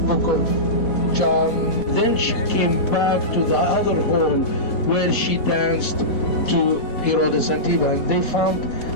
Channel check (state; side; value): late; right; 4.1 ms